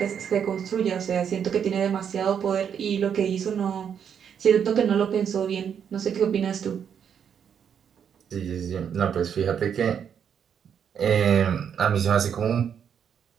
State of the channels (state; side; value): quieter; left; 7.9 dB